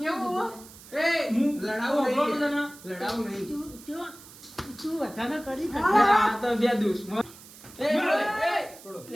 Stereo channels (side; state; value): right; noise; hiss, 19 dB below the sound